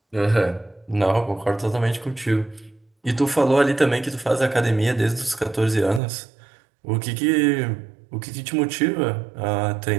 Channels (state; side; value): drops out; left; at 6.0 s